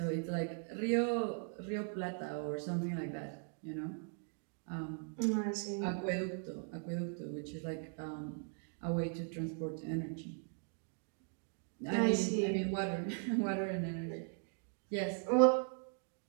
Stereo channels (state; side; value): silent; left; 52 dB below the other